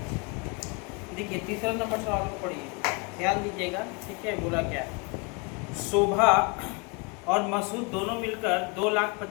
देखिए तीसरा नंबर सवाल को पढ़िए, ध्यान दीजिएगा, ठीक है। बोला क्या? शोभा और मसूद दोनों मिलकर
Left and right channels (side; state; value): right; quieter; 30.1 dB